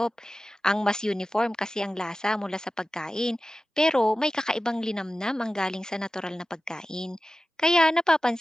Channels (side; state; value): both; normal; correlation 0.95